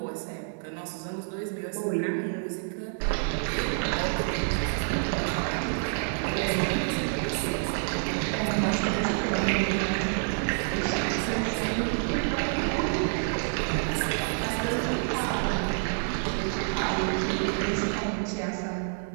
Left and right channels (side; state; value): left; silent; digital silence